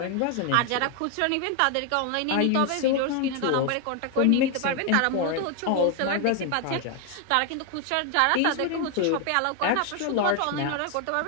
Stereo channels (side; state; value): both; different; correlation 0.01